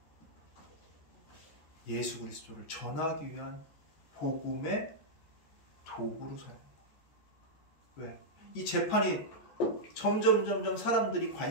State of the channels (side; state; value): right; late; 14 ms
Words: 예수 그리스도를 전하기 위한 복음의 도구로 사용합니다. 왜? 이 재판이 점점 사람들이